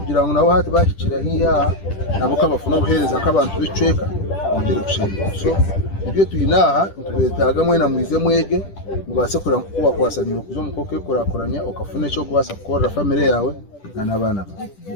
ngo nabo hati bashikira hiya nabo kabafuna guhereza nk'abantu bicweka ongere gushira so ibyo tuyinaha tubetaga mwena mwize mwege mubase kura kuba kwasanira kuzo mukoke kurakoranya ukafune cyo kubasa gukora family yawe n'abana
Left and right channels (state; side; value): late; right; 10 ms